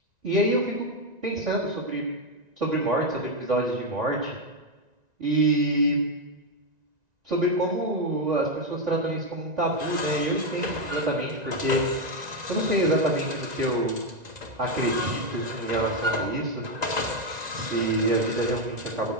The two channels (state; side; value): late; left; 1.9 ms